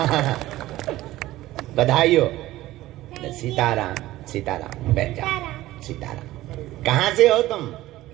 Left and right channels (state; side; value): quieter; left; 16.2 dB